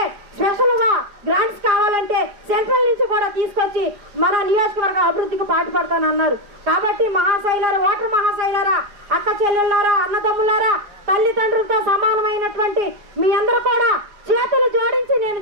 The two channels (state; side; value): late; left; 4.9 ms